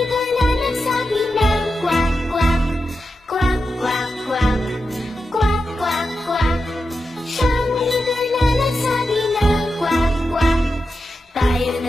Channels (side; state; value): both; normal; correlation 0.89